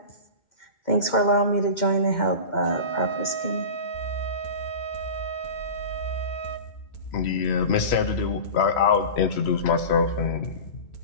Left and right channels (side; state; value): right; late; 2.2 ms